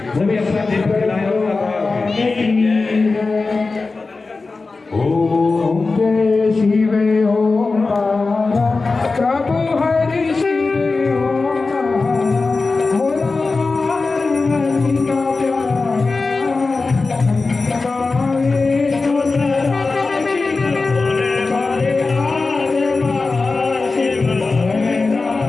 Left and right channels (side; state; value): right; quieter; 3.9 dB